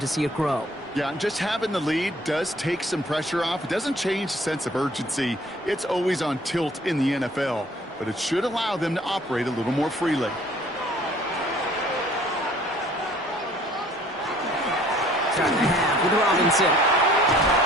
see it grow. Yeah, and just having the lead does take some pressure off. It doesn't change the sense of urgency. It's always on tilt in the NFL, but it should allow them to operate a little more freely. Start the half with Robinson.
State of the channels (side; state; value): both; normal; correlation 0.55